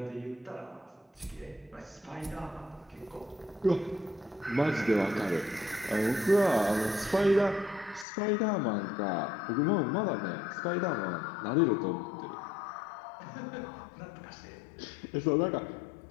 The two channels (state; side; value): drops out; right; at 8.1 s